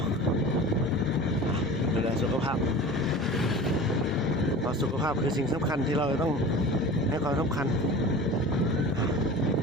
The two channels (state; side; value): normal; both; correlation 0.37